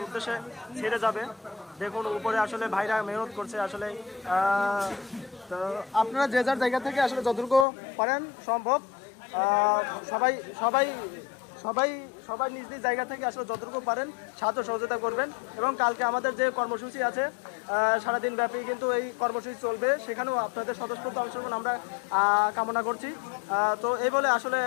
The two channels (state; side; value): drops out; right; at 7.7 s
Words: উদ্দেশ্যে ছেড়ে যাবে। দেখুন উপরে আসলে ভাইরা মেহনত করছে আসলে। তো আপনারা যে যার জায়গা থেকে আসলে যতটুকু পারেন সম্ভব সবাই সবাই সবাই সবাই নিজ নিজ জায়গা থেকে আসলে যতটুকু পারেন সাহায্য সহযোগিতা করবেন। এবং কালকে আমাদের যে কর্মসূচি আছে সারাদিন ব্যাপী কিন্তু এই কর্মসূচি চলবে, সেখানেও আপনাদের স্বতঃস্ফূর্ত অংশগ্রহণ আমরা কামনা করছি। তো এই বলে আসলে